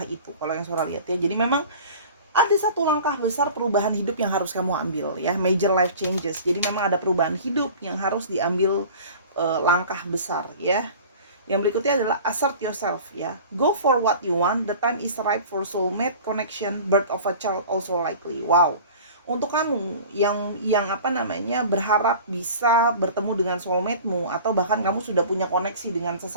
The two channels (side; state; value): both; inverted; correlation -0.41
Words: itu. Kalau yang Sora lihat ya, jadi memang ada satu langkah besar perubahan hidup yang harus kamu ambil ya, major life changes. Jadi memang ada perubahan hidup yang harus diambil langkah besar ya. Yang berikutnya adalah assert yourself ya. Go for what you want. The time is right for soulmate connection. Birth of a child also likely. Wow. Untuk kamu yang apa namanya berharap bisa bertemu dengan soulmate-mu, atau bahkan kamu sudah punya koneksi dengan